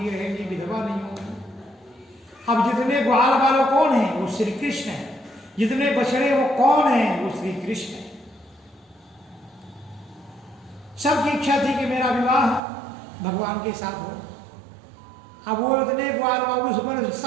रहेंगी, विधवा नहीं होगी। अब जितने ग्वाल बाल कौन है? वो श्री कृष्ण है। जितने बछड़े वो कौन है? वो श्री कृष्ण है। सबकी इच्छा थी कि मेरा विवाह भगवान के साथ हो। अब वो इतने ग्वाल बाल, उस पर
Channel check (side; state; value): left; drops out; at 12.6 s